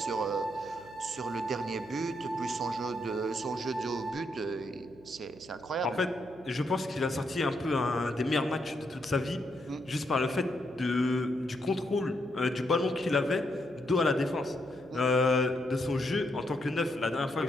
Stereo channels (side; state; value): right; noise; hum, 21 dB below the sound